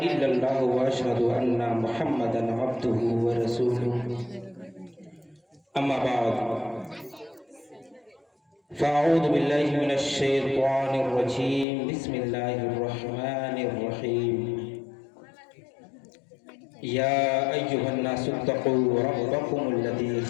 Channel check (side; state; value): right; drops out; at 11.7 s